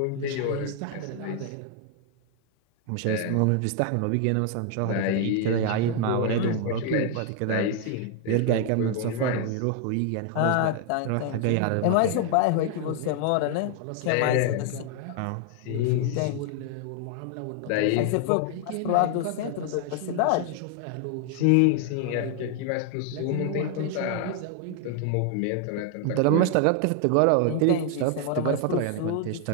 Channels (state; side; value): different; both; correlation 0.00